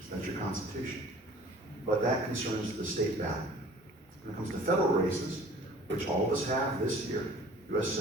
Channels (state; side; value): normal; both; correlation 0.49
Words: That's your Constitution. But that concerns the state ballot. When it comes to federal races, which all of us have this year, U.S.